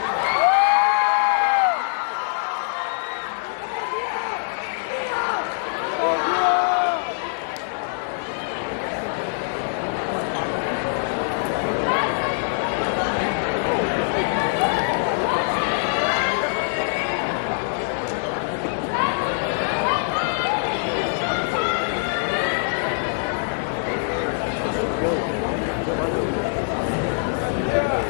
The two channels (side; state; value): right; silent; digital silence